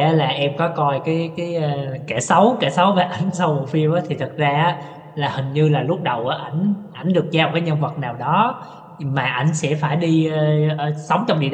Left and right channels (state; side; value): identical; both; correlation 1.00